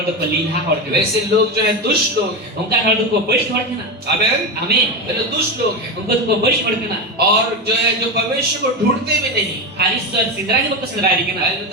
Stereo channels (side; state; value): both; normal; correlation 0.17